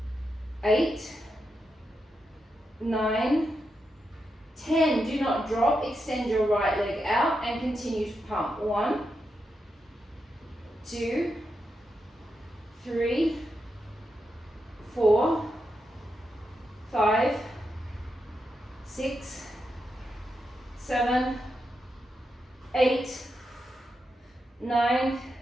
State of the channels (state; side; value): normal; both; correlation 0.86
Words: 8. 9. 10. Do not drop. Extend your right leg out and continue to pump. 1, 2, 3, 4, 5, 6, 7, 8, 9,